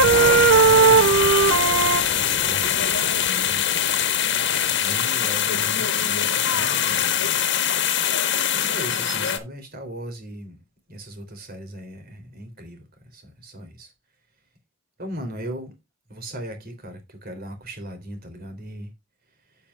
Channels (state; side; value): normal; both; correlation -0.07